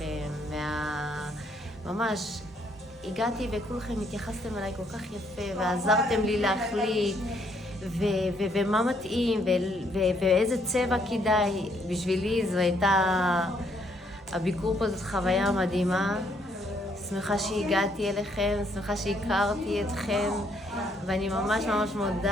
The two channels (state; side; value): normal; both; correlation 0.70